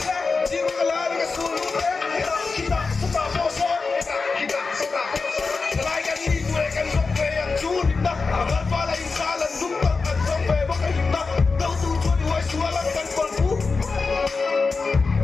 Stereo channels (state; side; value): quieter; right; 4.3 dB